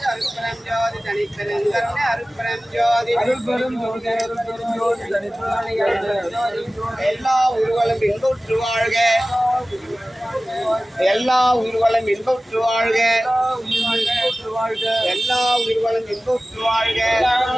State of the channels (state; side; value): normal; both; correlation 0.97